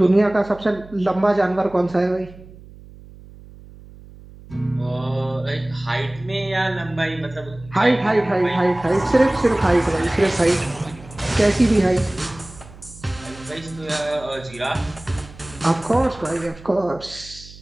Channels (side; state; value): right; noise; hum, 20 dB below the sound